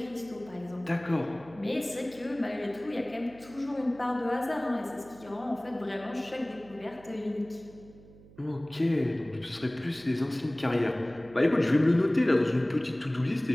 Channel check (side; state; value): right; noise; hum, 22 dB below the sound